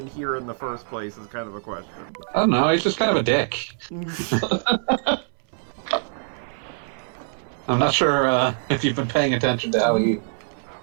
here in the first place is kind of a question. I don't know, he's just kind of a dick. I'm not sure if you've been paying attention to how he...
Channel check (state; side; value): silent; left; 63 dB below the other